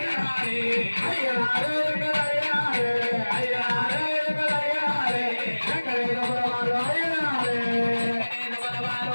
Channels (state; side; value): inverted; both; correlation -1.00